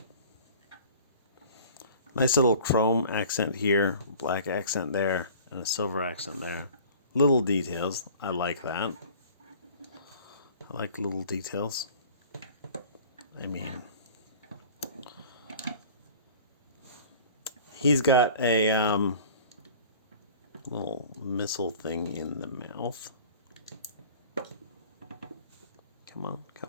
Nice little chrome accent here, black accent there, and a silver accent there. Little details. I like that. I like little details. I mean, he's got a little missile thing in the mouth. Come on,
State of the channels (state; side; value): inverted; both; correlation -0.45